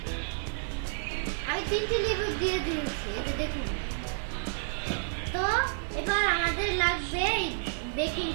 আমি 3টি লেবু দিয়ে দিয়েছি, এই যে দেখুন। তো এবার আমাদের লাগবে বেকিং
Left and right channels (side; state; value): left; silent; digital silence